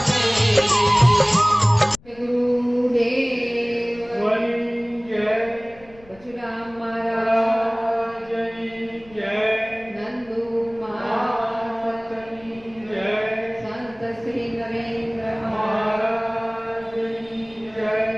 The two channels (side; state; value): left; noise; rumble, 25 dB below the sound